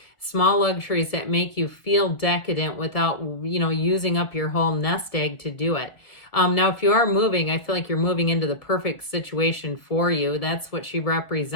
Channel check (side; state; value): right; late; 1.5 ms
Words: that make you feel decadent without, using up your whole nest egg to do it. Now, if you are moving, I feel like you're moving into the perfect situation for you. That's what she